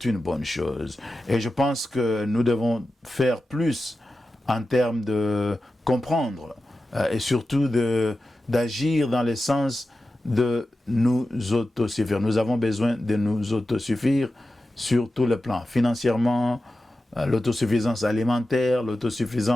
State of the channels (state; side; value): normal; both; correlation 0.93